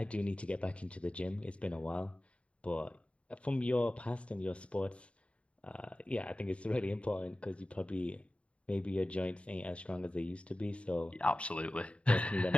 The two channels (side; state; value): right; late; 0.062 ms